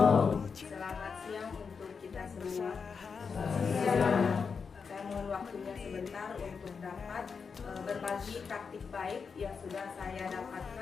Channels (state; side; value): quieter; right; 5.6 dB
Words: Selamat siang untuk kita semua. Saya mohon waktunya sebentar untuk dapat berbagi praktik baik yang sudah saya